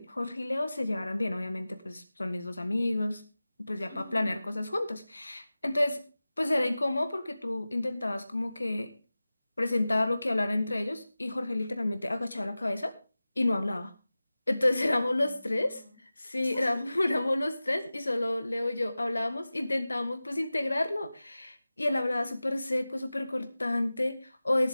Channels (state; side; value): inverted; both; correlation -0.97